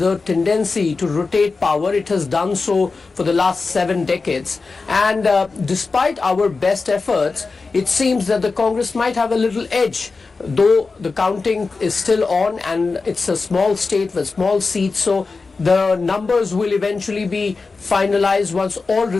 tendency to rotate power. It has done so for the last 7 decades. And despite our best efforts, it seems that the Congress might have a little edge, though the counting is still on and it's a small state with small seats. So the numbers will eventually be finalized once all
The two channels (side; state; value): right; quieter; 4.2 dB